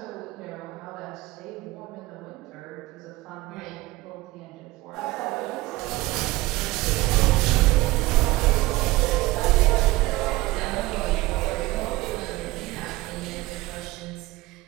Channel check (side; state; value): left; quieter; 19.4 dB